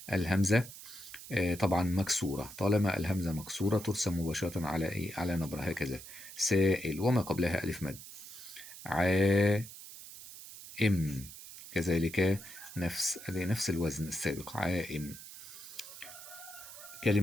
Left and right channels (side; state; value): right; noise; hiss, 14 dB below the sound